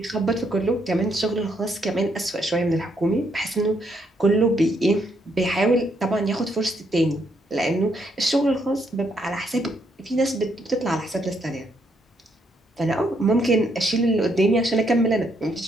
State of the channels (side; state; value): both; normal; correlation 0.74